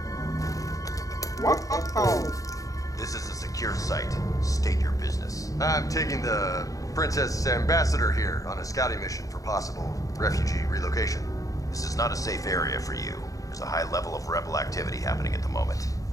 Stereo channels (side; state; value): right; late; 0.17 ms